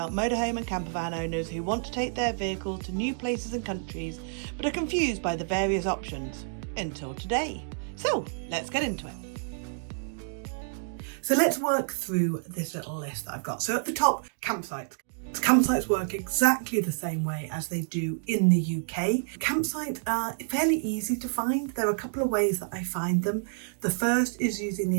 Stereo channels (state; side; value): silent; left; digital silence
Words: motorhome and campervan owners who want to take their vehicle to new places and countries, but are confused by the various options. Until today. So let's get into it. So let's work through this little list that I've got. So at the top, campsites. Campsites work exactly the same way as they do in the UK. Campsites are fairly easy to find. There are a couple of ways that I find them. The first is using the